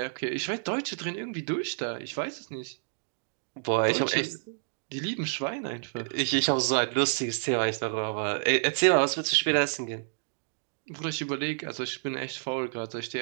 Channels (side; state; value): left; silent; digital silence